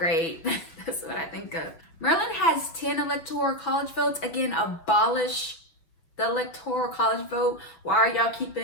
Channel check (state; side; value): late; right; 6.1 ms